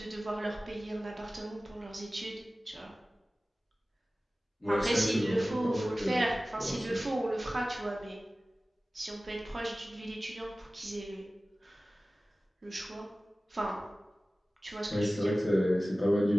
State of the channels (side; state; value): both; normal; correlation 0.97